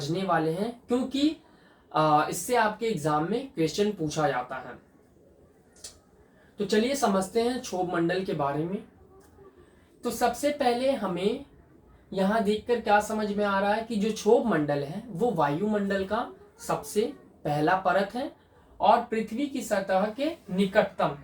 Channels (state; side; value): identical; both; correlation 1.00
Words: वाले हैं, क्योंकि इससे आपके एग्जाम में क्वेश्चन पूछा जाता है। तो चलिए समझते हैं क्षोभ मंडल के बारे में। तो सबसे पहले हमें यहां देखकर क्या समझ में आ रहा है कि जो क्षोभ मंडल है वो वायुमंडल का सबसे पहला परत है और पृथ्वी की सतह के निकटतम।